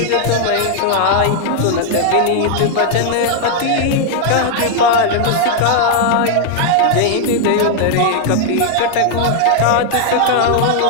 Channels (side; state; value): both; different; correlation 0.00